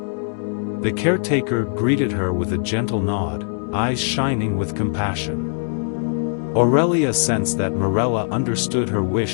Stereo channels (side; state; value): right; silent; digital silence